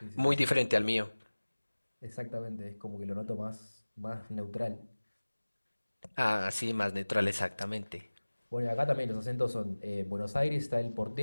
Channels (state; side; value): inverted; both; correlation -1.00